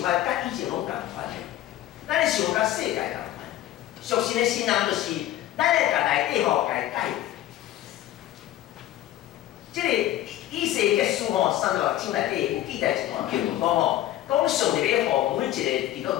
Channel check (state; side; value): quieter; right; 13.5 dB